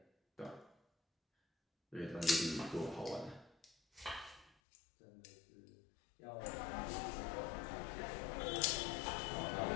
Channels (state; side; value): drops out; right; at 4.5 s